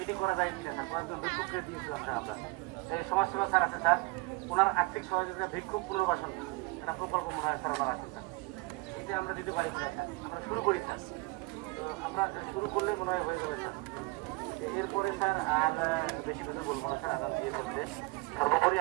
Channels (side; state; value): left; quieter; 24.5 dB